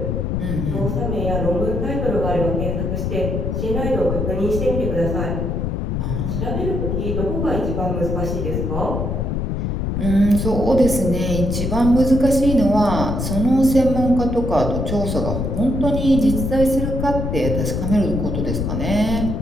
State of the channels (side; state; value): left; noise; rumble, 1 dB below the sound